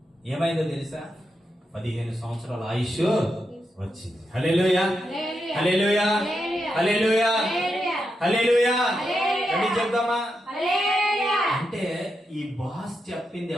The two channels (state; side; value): normal; both; correlation 0.85